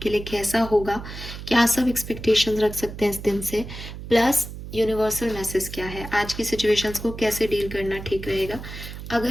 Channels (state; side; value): noise; right; hum, 10 dB below the sound